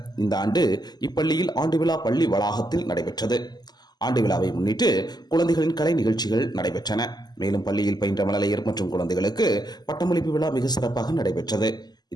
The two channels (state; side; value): late; right; 0.20 ms